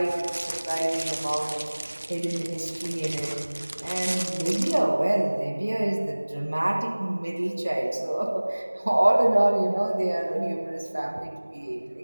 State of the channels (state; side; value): inverted; both; correlation -1.00